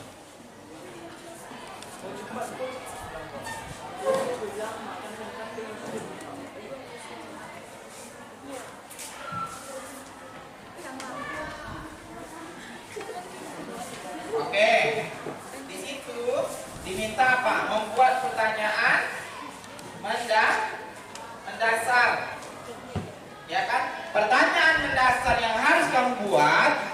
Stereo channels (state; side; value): identical; both; correlation 1.00